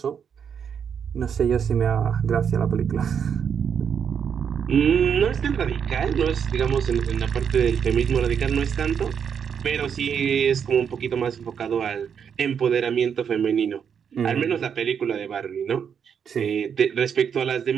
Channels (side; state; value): left; quieter; 7.4 dB